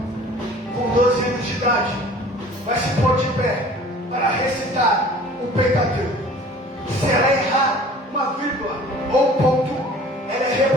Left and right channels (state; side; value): normal; both; correlation 0.47